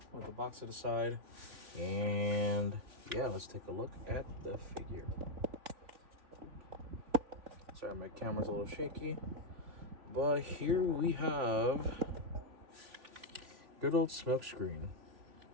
with the box to the side. And yeah, let's take a look at the figure. Sorry, my camera's a little shaky. But here we have good old Smokescreen.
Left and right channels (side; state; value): left; late; 3.4 ms